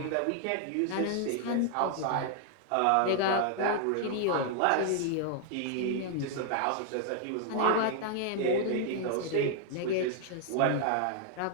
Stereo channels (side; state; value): both; different; correlation 0.00